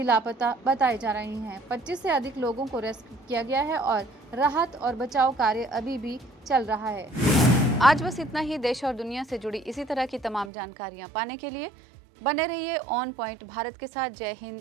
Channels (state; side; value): drops out; left; at 10.5 s